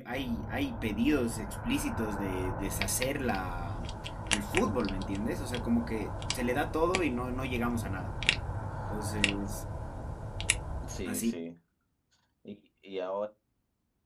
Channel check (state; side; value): identical; both; correlation 1.00